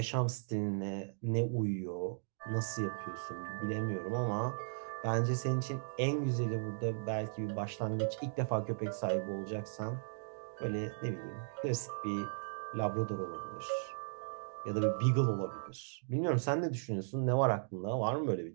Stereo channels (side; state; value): left; silent; digital silence